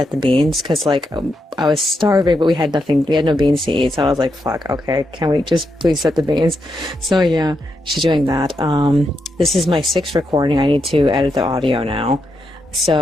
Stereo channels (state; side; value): normal; both; correlation 0.83